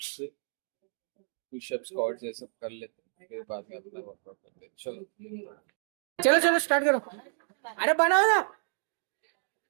पुशअप स्क्वाट्स ये सब कर लेते हैं, फिर बाद में अपना वर्कआउट करते हैं। चलो चलो चलो स्टार्ट करो। अरे बनाओ ना,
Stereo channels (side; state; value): left; silent; 57 dB below the other